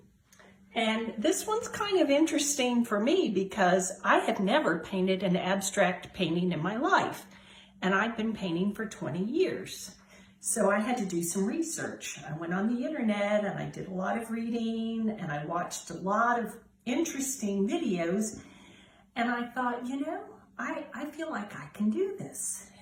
And this one's kind of interesting for me because I have never painted an abstract painting in my life. And I've been painting for 20 years. So I had to do some research. I went on the internet and I did a lot of reading and I watched a lot of interesting videos, and I thought, I feel like I can do this.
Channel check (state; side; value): identical; both; correlation 1.00